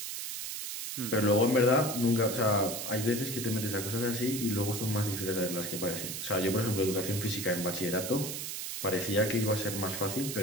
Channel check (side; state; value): right; noise; hiss, 5 dB below the sound